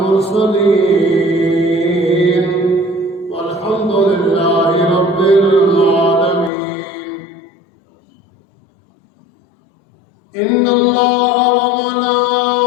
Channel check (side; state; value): right; drops out; at 6.5 s